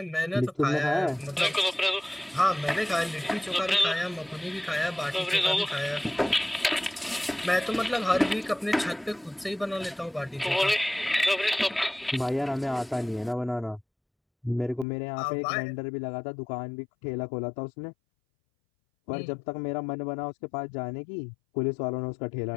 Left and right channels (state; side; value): drops out; right; at 14.9 s